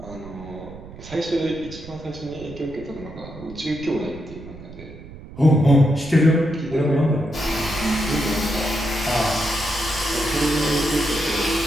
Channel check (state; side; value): noise; right; rumble, 15 dB below the sound